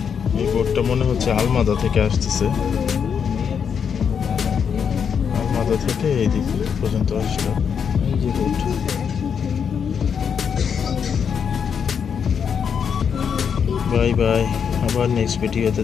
এই বোটটা মনে হচ্ছে আলমাদা থেকে আসতেছে। আলমাদা থেকে এই দিক পর্যন্ত আসলো এই যে বোট। বাই বাই, আবার নেক্সট ভিডিওতে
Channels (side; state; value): right; quieter; 7.1 dB